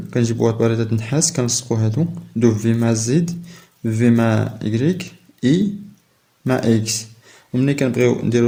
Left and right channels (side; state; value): both; identical; correlation 1.00